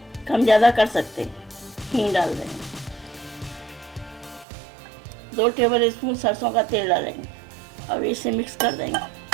कम ज़्यादा कर सकते हैं, हींग डाल देंगे, 2 टेबल स्पून सरसों का तेल डालेंगे। अब इसे मिक्स कर देंगे।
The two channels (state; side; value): drops out; left; at 4.5 s